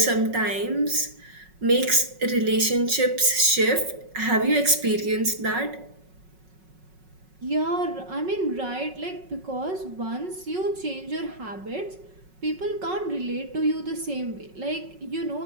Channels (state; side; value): late; left; 5.4 ms